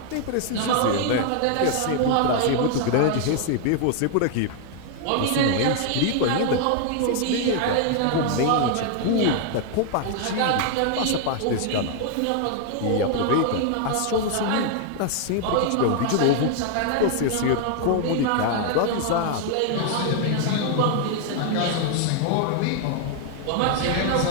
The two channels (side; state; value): both; different; correlation 0.00